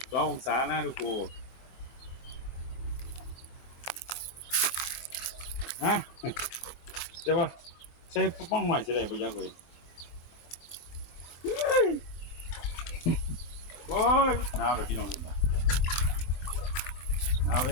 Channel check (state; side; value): late; right; 24 ms